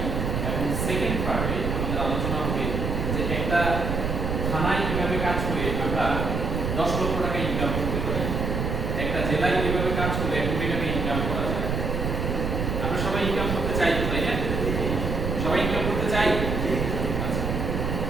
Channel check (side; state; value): right; noise; rumble, 1 dB below the sound